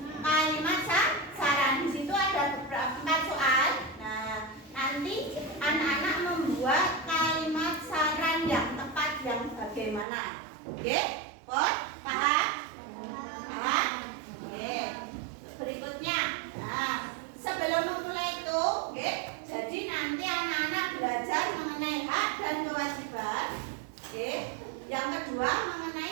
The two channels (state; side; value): drops out; left; at 10.1 s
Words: kalimat saran. Di situ ada beberapa 4 soal. Nah, nanti anak-anak membuat kalimat saran yang tepat yang bagaimana. Oke? Paham? Paham? Oke. Berikutnya. Nah, sebelum memulai itu, oke, jadi nanti anak-anak belajar mengenai hak dan kewajiban. Oke. Yang kedua